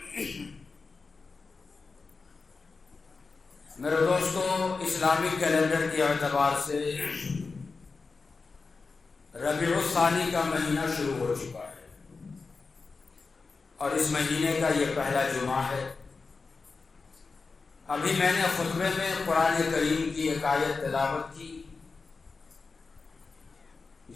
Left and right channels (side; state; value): right; quieter; 4.3 dB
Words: میرے دوستوں، اسلامی کیلنڈر کے اعتبار سے ربیع الثانی کا مہینہ شروع ہو چکا ہے اور اس مہینے کا یہ پہلا جمعہ ہے. ابھی میں نے خطبے میں قرآن کریم کی ایک آیت تلاوت کی